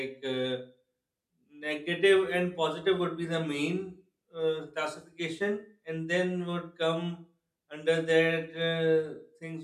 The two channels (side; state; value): both; identical; correlation 1.00